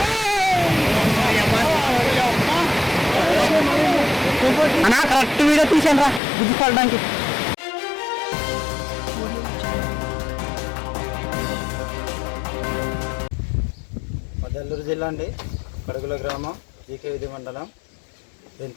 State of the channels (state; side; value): drops out; right; at 6.2 s